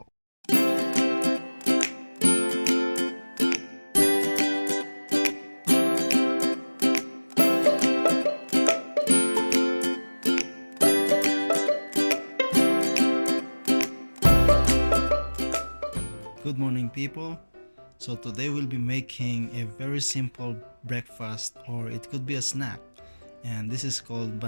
Good morning, people. So today we'll be making a very simple breakfast, or it could be a snack, and this is called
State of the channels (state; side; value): inverted; both; correlation -1.00